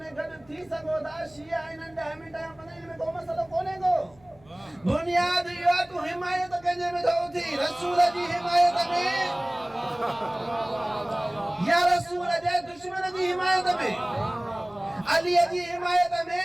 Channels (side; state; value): left; noise; hum, 28 dB below the sound